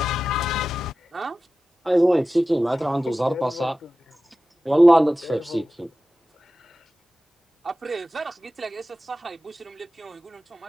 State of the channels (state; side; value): normal; both; correlation 0.95